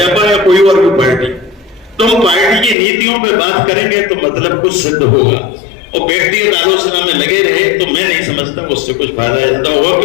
या कोई और भी पार्टी, तो हम पार्टी की नीतियों पे बात करेंगे तो मतलब कुछ सिद्ध होगा, और व्यक्तिगत आलोचना में लगे रहे तो मैं नहीं समझता उससे कुछ फायदा ज्यादा होगा।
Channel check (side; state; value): right; drops out; at 2.8 s